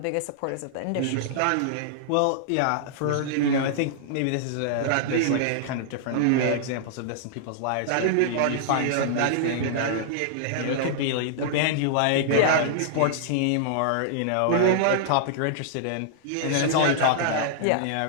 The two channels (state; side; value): different; both; correlation -0.01